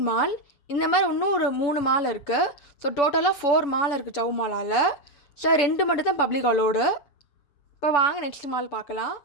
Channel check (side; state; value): right; late; 7.0 ms